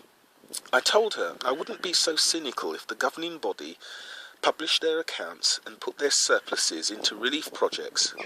I told her I wouldn't be so cynical if the governing body published their accounts and put their surpluses into relief projects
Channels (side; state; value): both; identical; correlation 1.00